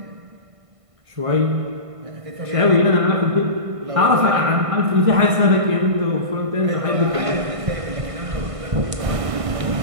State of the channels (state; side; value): late; left; 1.5 ms